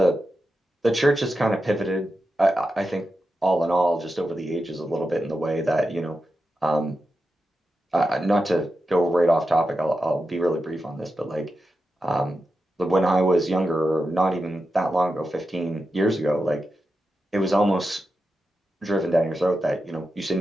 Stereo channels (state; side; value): normal; both; correlation 0.90